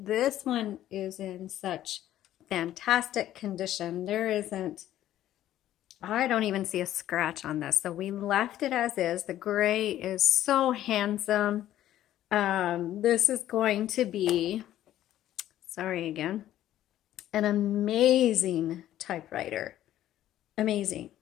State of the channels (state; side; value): quieter; right; 12.8 dB